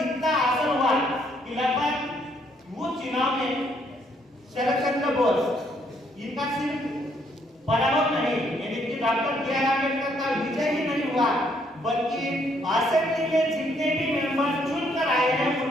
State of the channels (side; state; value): both; normal; correlation 0.70